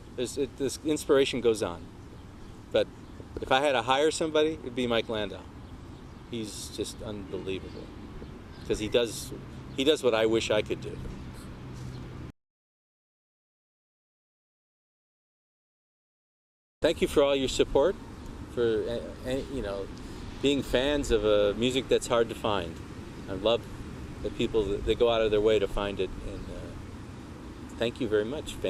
this inspiration goes on. But if I had to hire somebody, it'd be Mike Landau. He's just unbelievable because he does what I wish I could do. Thank you for all your support, for being fans of music that's hard to find. I love the people that go out of their way to find it, and thank you very much,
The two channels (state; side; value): identical; both; correlation 1.00